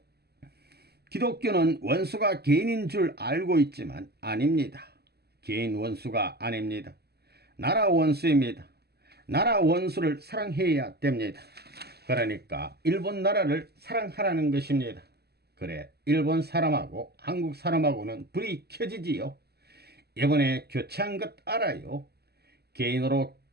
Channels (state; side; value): late; left; 0.47 ms